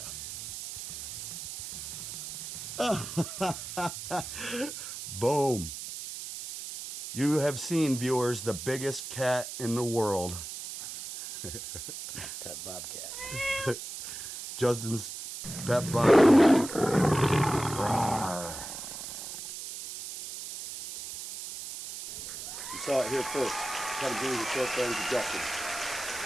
that. Boom. You have seen, viewers, the biggest cat in the world. Pet bobcat. Justin's pet bobcat. Rawr. You saw it here first. Come bring the short friends to Justin.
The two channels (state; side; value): noise; right; hiss, 8 dB below the sound